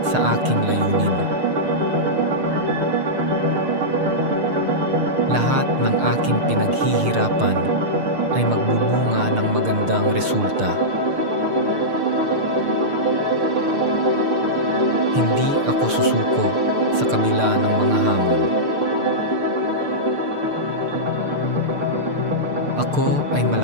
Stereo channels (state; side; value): late; left; 6.6 ms